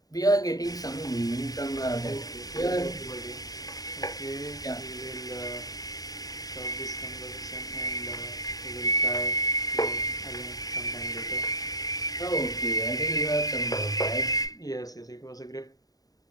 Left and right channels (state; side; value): late; right; 0.18 ms